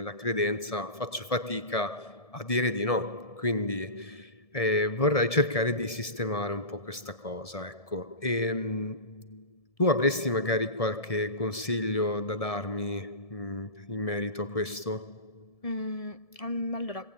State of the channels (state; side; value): late; right; 1.7 ms